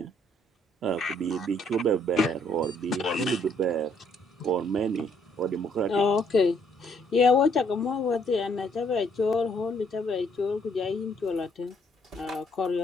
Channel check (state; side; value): normal; both; correlation 0.68